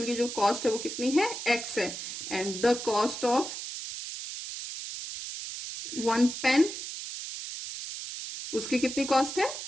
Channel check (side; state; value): right; noise; hiss, 7 dB below the sound